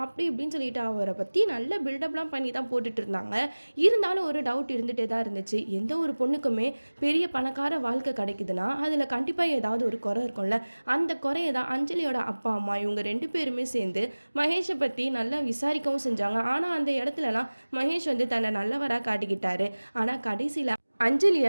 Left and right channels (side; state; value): both; inverted; correlation -1.00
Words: அப்படி இப்படின்னு சொல்லிட்டு அவரை பற்றி நல்ல பில்டப்லாம் பண்ணி தான் போட்டுட்டு இருந்தாங்க. இருந்தாலும் ஒரு டவுட் இருந்துகிட்டே தான் இருந்துச்சு. எந்த ஒரு பொண்ணுக்குமே பெரிய பணக்கார வாழ்க்கை கிடைக்குதுன்னா அதில் கண்டிப்பாக ஏதாவது ஒரு குறை இருக்கும்ல. அந்த குறையை தான் அஞ்சலியோட அப்பா அம்மா இவங்க 2 பேருமே சேர்ந்து மகேஷை பற்றி நல்லா விசாரிக்கவும் செஞ்சாங்க. ஆனால் அந்த இடத்துலலாம் மகேஷ் வந்து தன்னை நல்லவராக காட்டிக்கிட்டாரு. ஆனால் கடைசியில் அஞ்சலியை